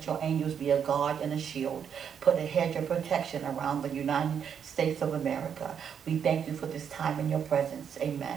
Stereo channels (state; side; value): quieter; left; 7.8 dB